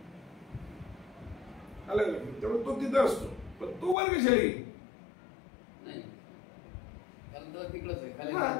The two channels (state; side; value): drops out; right; at 4.0 s